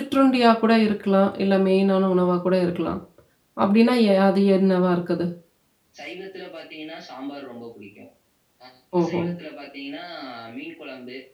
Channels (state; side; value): identical; both; correlation 1.00